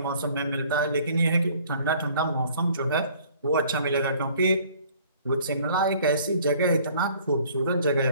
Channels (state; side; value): inverted; both; correlation -0.55